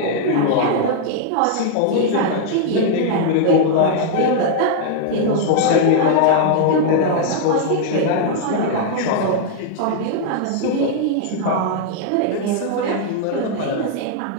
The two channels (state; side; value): different; both; correlation -0.01